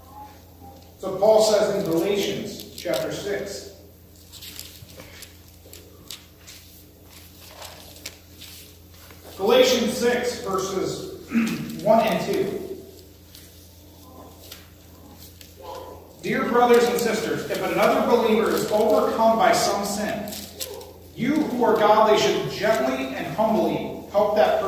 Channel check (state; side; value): identical; both; correlation 1.00